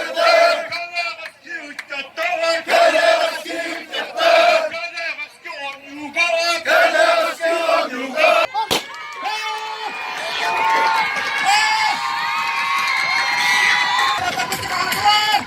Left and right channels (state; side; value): identical; both; correlation 1.00